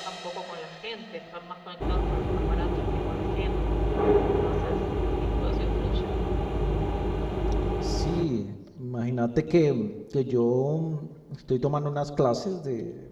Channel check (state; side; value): identical; both; correlation 1.00